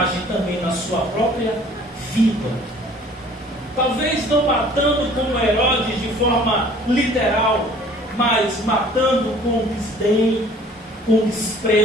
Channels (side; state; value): both; normal; correlation 0.52